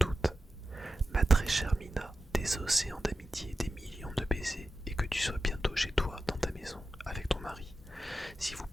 août. Ma très chère Mina, des océans d'amitié, des millions de baisers, et que tu sois bientôt chez toi, dans ta maison, avec ton mari. Si vous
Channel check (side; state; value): both; normal; correlation 0.91